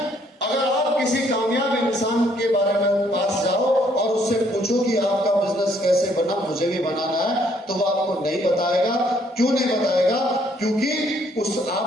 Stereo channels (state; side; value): normal; both; correlation 0.67